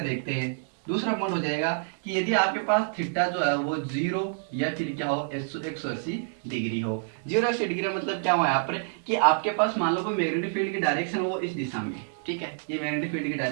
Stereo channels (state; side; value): silent; left; digital silence